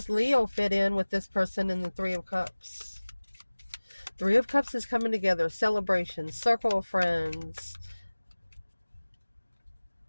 Leo fit in with this person in the Three of Cups? Three of Cups is coming together. Celebration. Circle of friends.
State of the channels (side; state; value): both; inverted; correlation -1.00